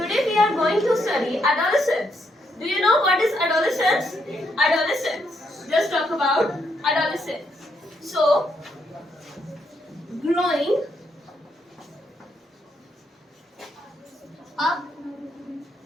we are going to study adolescence. Do you know what is adolescence? Adolescence. Just talk about adolescence. So, growing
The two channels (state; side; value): normal; both; correlation 0.76